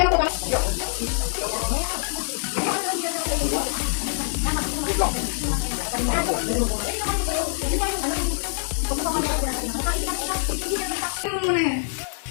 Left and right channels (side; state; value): right; silent; 62 dB below the other